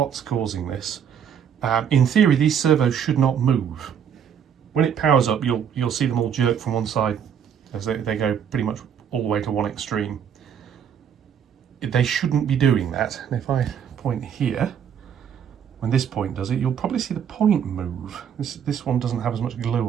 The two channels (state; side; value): quieter; left; 8.2 dB